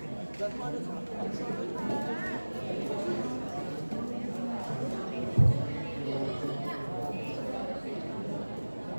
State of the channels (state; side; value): inverted; both; correlation -1.00